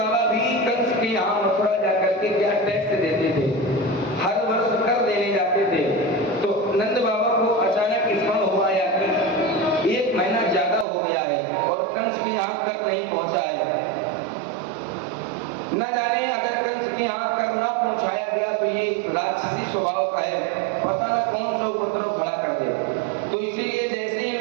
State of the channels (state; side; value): drops out; left; at 10.9 s